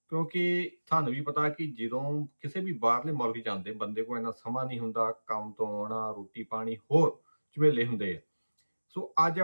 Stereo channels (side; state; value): both; inverted; correlation -1.00